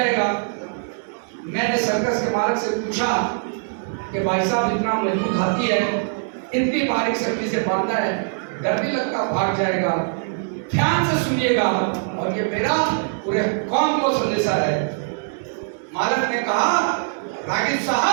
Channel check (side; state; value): left; silent; 64 dB below the other